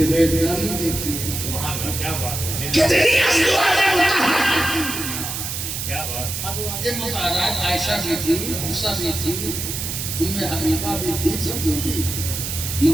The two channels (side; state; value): right; noise; hiss, 4 dB below the sound